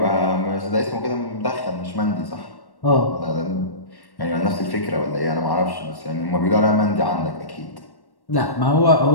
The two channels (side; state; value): right; late; 1.1 ms